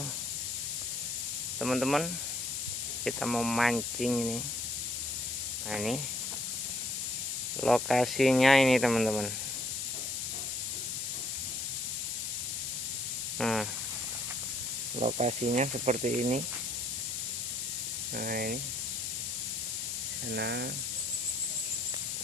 Teman-teman, kita mau mancing ini. Nah, ini lokasinya ini teman-teman. Nah, lokasinya seperti ini. Nah, ini sana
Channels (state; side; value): noise; left; hiss, 3 dB below the sound